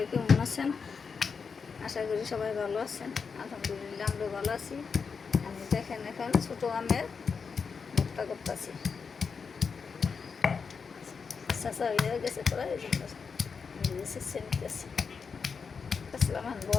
কেমন আছেন? আশা করি সবাই ভালো আছেন। আলহামদুলিল্লাহ আমরা ভালো আছি। আমি দেখেন এখন ছোটো আমের ভর্তা করতেছি। চাষা হয়ে গেছে প্রায় এই জন্য নিতেছি। আসলাম এখন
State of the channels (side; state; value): right; quieter; 5.6 dB